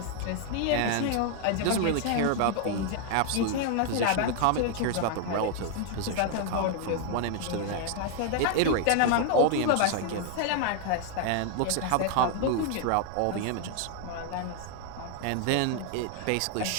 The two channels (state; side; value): different; both; correlation 0.00